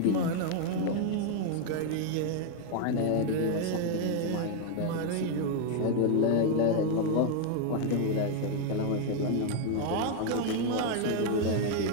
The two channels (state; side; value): different; both; correlation 0.01